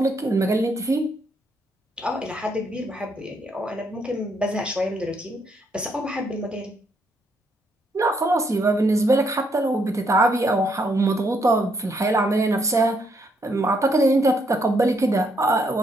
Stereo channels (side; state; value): both; normal; correlation 0.74